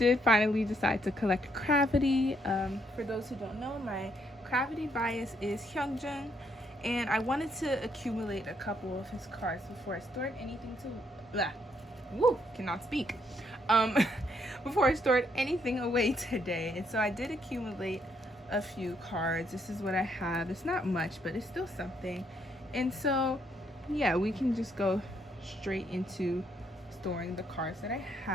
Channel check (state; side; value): normal; both; correlation 0.73